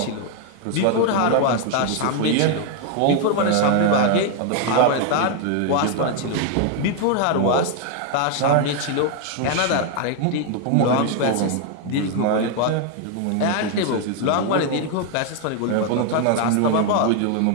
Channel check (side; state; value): both; different; correlation 0.00